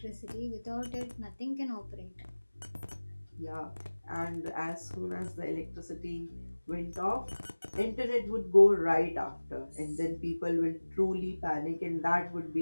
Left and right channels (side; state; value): both; inverted; correlation -1.00